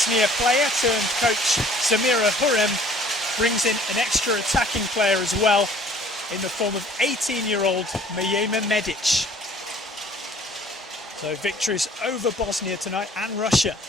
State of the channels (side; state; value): both; normal; correlation 0.54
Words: player turned coach Samira Hurrem brings in an extra attacking player as well, in the form of 18-year-old Mijema Medic. So victories over Bosnia tonight and Russia